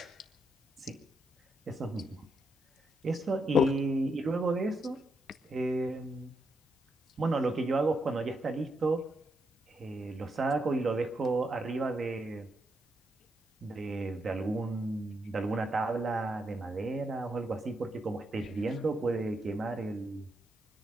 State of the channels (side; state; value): both; normal; correlation 0.81